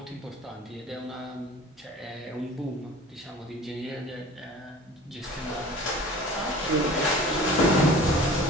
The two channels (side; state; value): both; normal; correlation 0.43